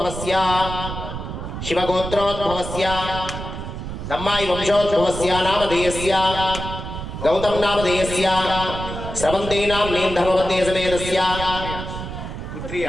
शिवगोत्रोद्भवस्य दम्मायि वंशोद्भवस्य नामधेयस्य गौतम नामधेयस्य स्रवन्ती नाम्नीं धर्मवती समेतस्य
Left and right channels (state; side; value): noise; right; rumble, 7 dB below the sound